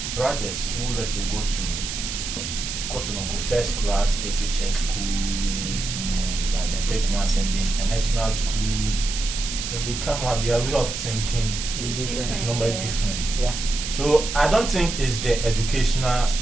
brothers who, let's say, go to first class SHS schools, you know, like the big ones, and the international schools, when they come out, their way of thinking It's different. is normally Yeah. different. Yeah. So I don't think it's the educational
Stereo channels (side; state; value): right; noise; hiss, 5 dB below the sound